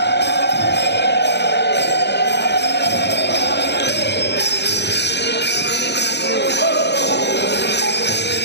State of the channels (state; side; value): late; right; 0.50 ms